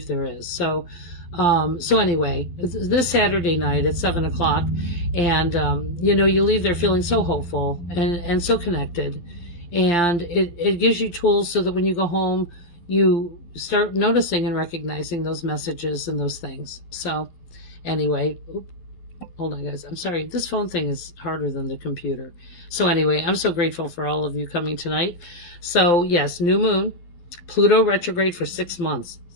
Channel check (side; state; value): right; late; 12 ms